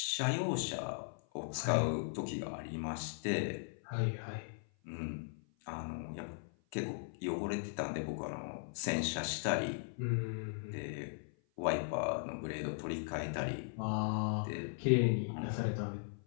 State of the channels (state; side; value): silent; right; 52 dB below the other